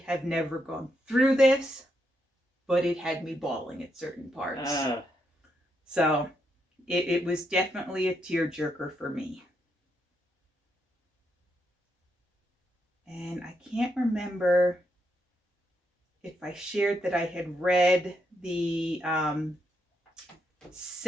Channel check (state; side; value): normal; both; correlation 0.80